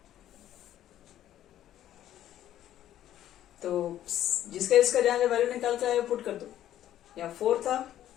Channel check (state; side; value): quieter; right; 12.1 dB